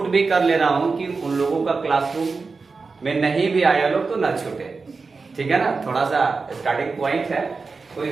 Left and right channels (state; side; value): quieter; left; 4.4 dB